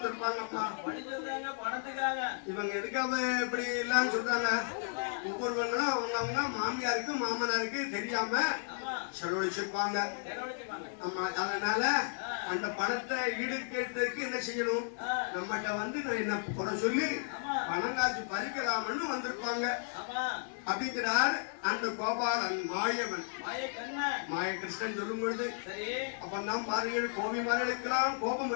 இவங்க எதுக்காக இப்படி இல்லன்னு சொல்றாங்க? ஒவ்வொருவங்களும் அவங்க மாமியாருக்கு மாமனாருக்கு தெரியாம செலவழிச்சிருப்பாங்க. ஆமா, அதனால அந்த பணத்தை ஈடுகட்டுறதுக்கு என்ன செய்யணும்? நம்மகிட்ட வந்து நான் என்ன குறை சொல்லி பணம் காசு பறிக்கலாம்னு வந்திருப்பாங்க அப்படிங்கிறார் அந்த கோபாலன் மாயவன். மாயகிருஷ்ணன் சொல்லும் பொழுது அப்பதான் பாருங்கள், கோபி மார்களுக்கெல்லாம் கோபம்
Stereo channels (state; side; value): silent; right; digital silence